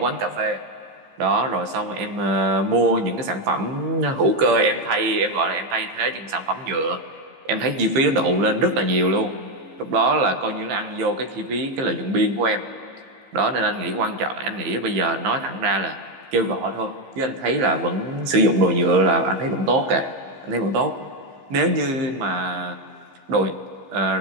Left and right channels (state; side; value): late; left; 15 ms